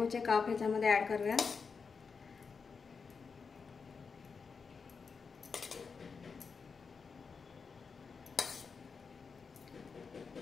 काप ह्याच्यामध्ये ॲड करूया.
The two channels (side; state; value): right; quieter; 5.3 dB